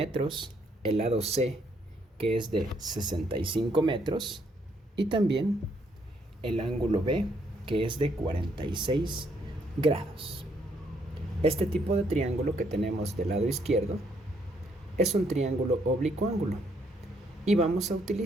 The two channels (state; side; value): normal; both; correlation 0.71